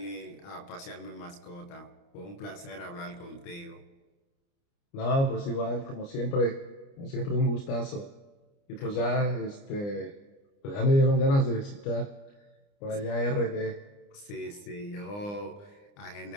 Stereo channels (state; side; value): late; right; 29 ms